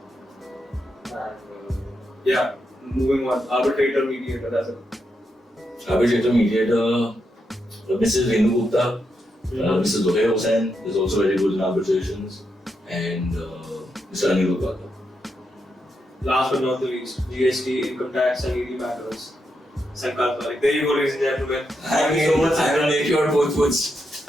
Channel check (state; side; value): normal; both; correlation 0.84